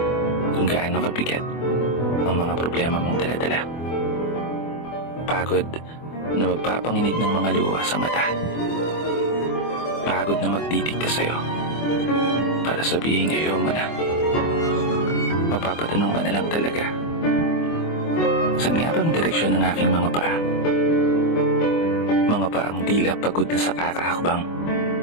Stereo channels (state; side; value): late; right; 24 ms